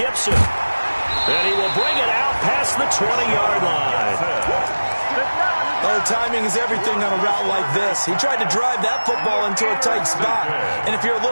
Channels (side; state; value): both; inverted; correlation -1.00